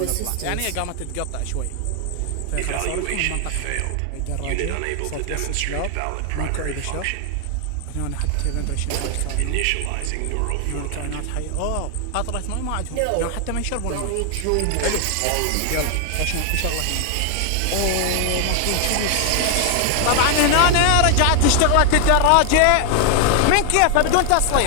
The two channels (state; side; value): different; both; correlation 0.00